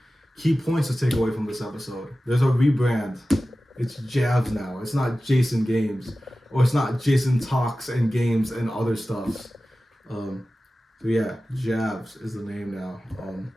Key points to take away from this episode. There's a rebrand. It's Jabs now. It's not Jason Games. Or it's not Jason Talks and Games and other stuff. So yeah, Jabs is the name now.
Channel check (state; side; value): normal; both; correlation 0.95